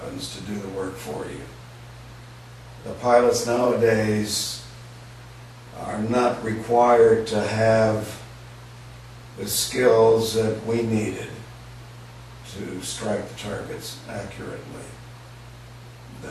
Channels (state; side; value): identical; both; correlation 1.00